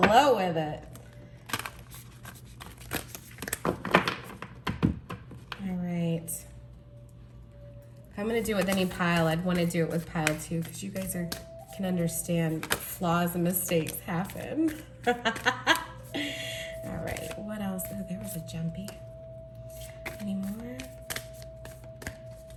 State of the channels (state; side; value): identical; both; correlation 1.00